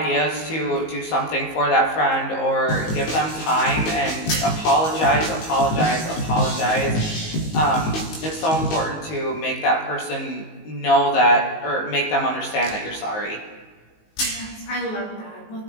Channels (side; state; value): right; late; 19 ms